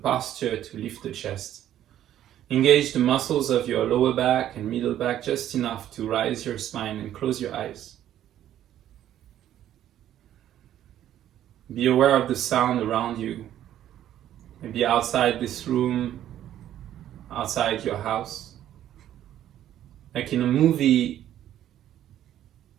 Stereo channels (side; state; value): left; quieter; 11.7 dB